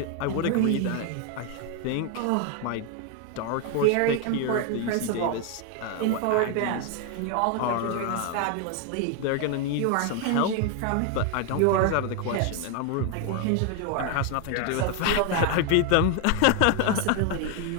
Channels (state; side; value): different; both; correlation 0.01